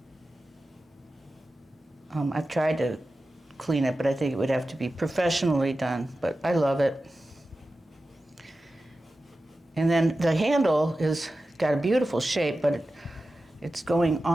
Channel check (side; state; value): both; normal; correlation 0.94